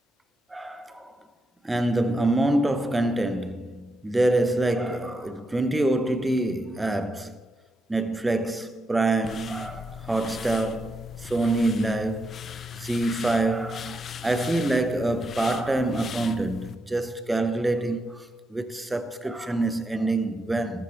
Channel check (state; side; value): normal; both; correlation 0.83